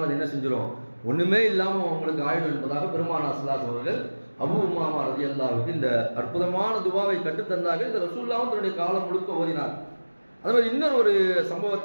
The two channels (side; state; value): both; inverted; correlation -1.00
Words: அது என்ன செஞ்சிடும், ஒண்ணுமே இல்லாம உங்களுக்கு ஆயிடும் என்பதாக பெருமானார் ஸல்லல்லாஹு அலைஹி வஸல்லம் அவர்கள் அபூ உமாமா ரலியல்லாஹு அன்ஹு இந்த அற்புதமான துவாவை கற்றுத்தந்தார்கள். இந்த ரசூலுல்லாஹ் தன்னுடைய காலம் முழுக்க ஓதினார். அதே மாதிரி இன்னொரு ஒரு